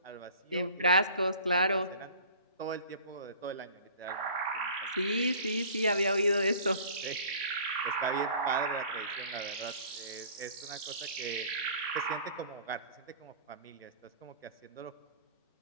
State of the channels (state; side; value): inverted; both; correlation -0.46